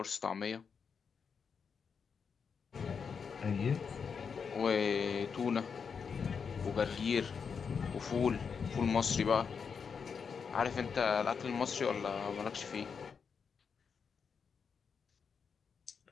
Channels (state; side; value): quieter; right; 6.1 dB